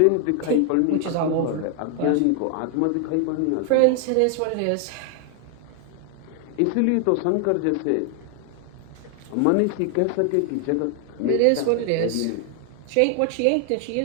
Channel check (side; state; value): both; different; correlation 0.00